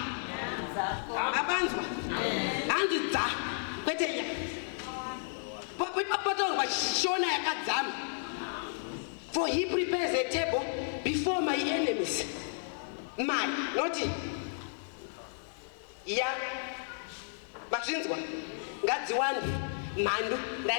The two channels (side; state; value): right; silent; digital silence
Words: Abanzwa hanzi dza kwete ya papatorwa shona yakadzama. For he prepares a table before my enemies. My, not ya mazvinzwa ngadziwande mhandu.